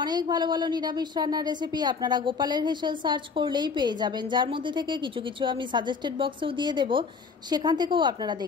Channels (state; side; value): quieter; right; 5.2 dB